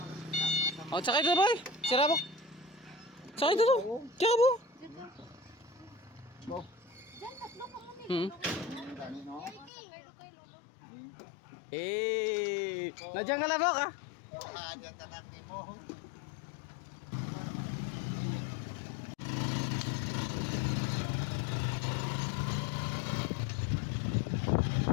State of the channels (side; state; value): right; drops out; at 9.7 s